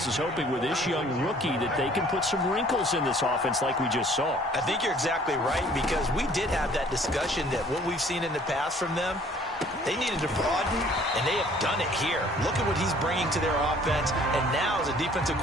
is hoping with this young rookie that they can put some wrinkles in this offense like we just saw. I think you're exactly right, because we did have that discussion that what we've seen in the past from them, they needed to broaden, and they have done it here. Look at what he's bringing to their offense, and now as a defensive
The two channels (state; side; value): normal; both; correlation 0.56